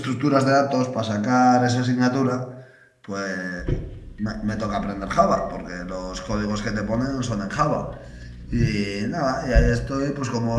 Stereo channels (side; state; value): both; identical; correlation 1.00